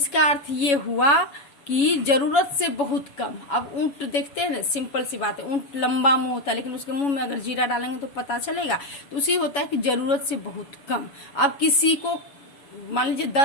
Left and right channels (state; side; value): late; right; 7.1 ms